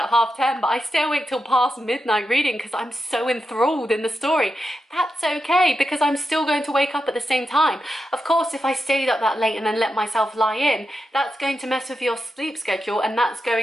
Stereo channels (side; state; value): both; normal; correlation 0.88